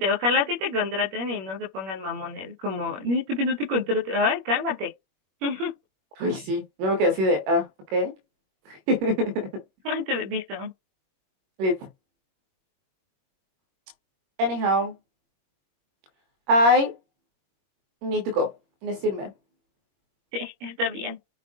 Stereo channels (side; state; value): left; late; 21 ms